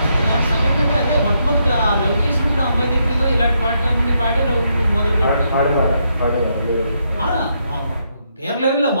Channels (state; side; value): inverted; both; correlation -0.78